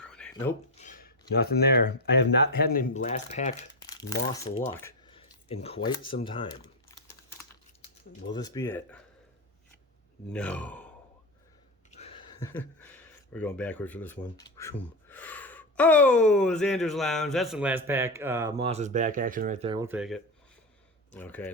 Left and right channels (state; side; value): normal; both; correlation 0.13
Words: Nope. Nothing there. I have not had any last pack Moss luck in quite some time. Will this be it? No. We're going backwards for this one. Oh, Xander's Lounge. That's some last pack Moss's back action right there. We'll take it. Okay,